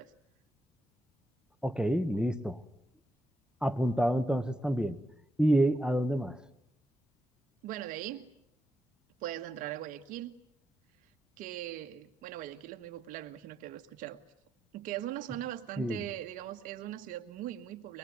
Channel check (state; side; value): normal; both; correlation 0.83